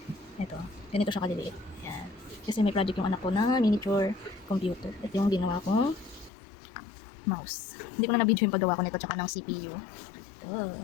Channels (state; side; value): drops out; right; at 6.3 s